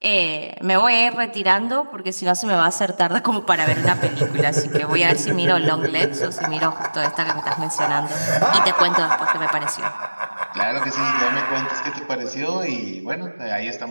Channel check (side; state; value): both; inverted; correlation -1.00